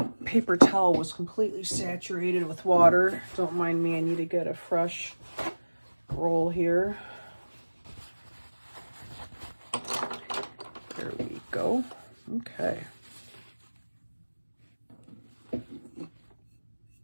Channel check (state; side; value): inverted; both; correlation -1.00